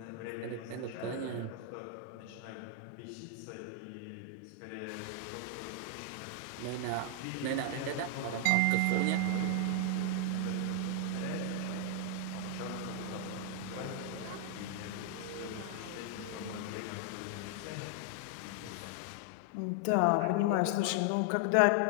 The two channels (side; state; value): both; different; correlation 0.00